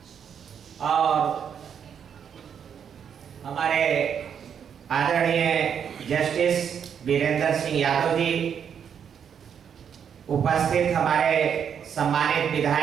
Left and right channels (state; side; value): quieter; left; 7.9 dB